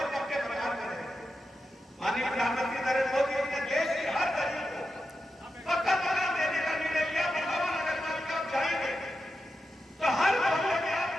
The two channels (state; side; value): normal; both; correlation 0.89